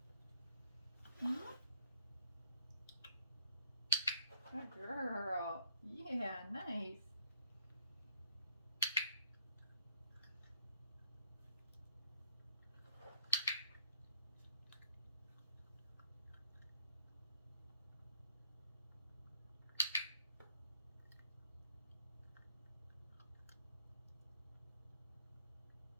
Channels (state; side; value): inverted; both; correlation -0.69